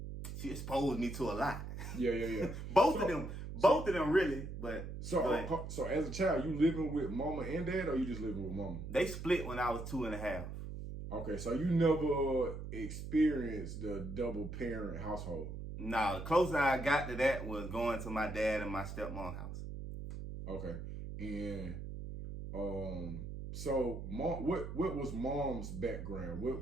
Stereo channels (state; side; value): noise; right; hum, 7 dB below the sound